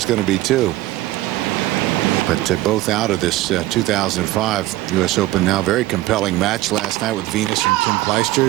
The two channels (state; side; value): quieter; left; 17.0 dB